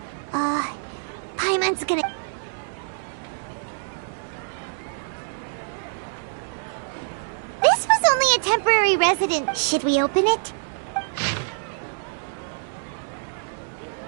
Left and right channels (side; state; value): left; silent; digital silence